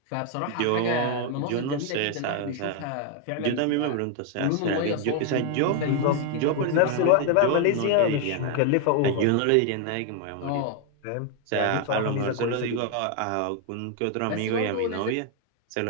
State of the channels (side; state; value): both; different; correlation 0.01